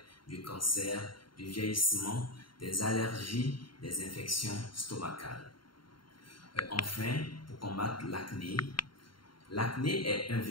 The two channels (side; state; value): right; late; 0.72 ms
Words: du cancer, du vieillissement, des allergies, des infections stomacales. Enfin, pour combattre l'acné, l'acné est un